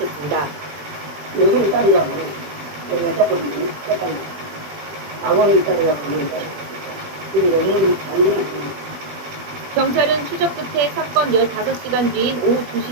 요즘 딸이라고 여자분이 세상에 아버님 딸이라고 하는데 그리고 여기 장면을 경찰은 추적 끝에 사건 15시간 뒤인 오후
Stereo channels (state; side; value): late; left; 20 ms